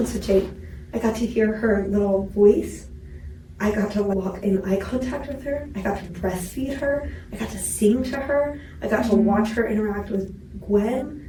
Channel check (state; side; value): identical; both; correlation 1.00